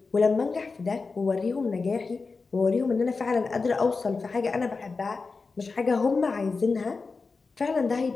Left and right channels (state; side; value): quieter; right; 4.3 dB